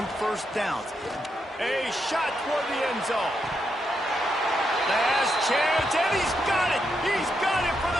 first downs. A shot toward the end zone. Last chance, and he's got it. He's got it for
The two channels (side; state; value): both; normal; correlation 0.82